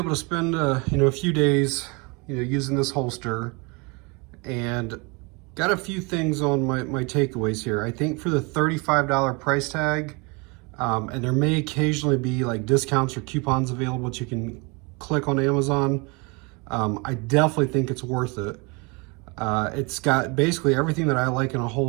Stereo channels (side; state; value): left; quieter; 29.1 dB